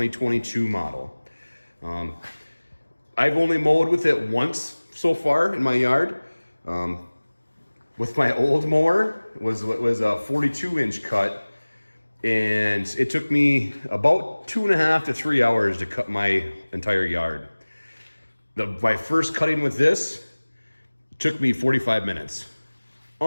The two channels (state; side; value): inverted; both; correlation -1.00